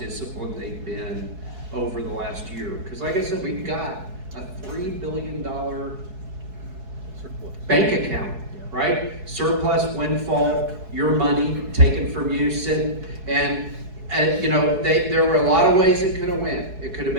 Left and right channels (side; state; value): left; late; 4.7 ms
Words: they've been over the last year. Because like I said, we've got a $3 billion bank account, right? Surplus, windfall, your money taken from you, and there were a lot of ways it could have went. It could have